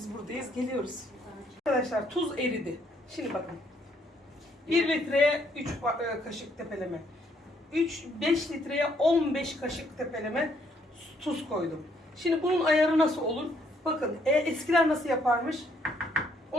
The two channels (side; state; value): both; normal; correlation 0.69